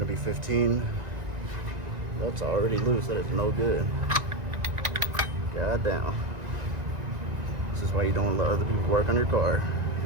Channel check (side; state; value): left; late; 1.9 ms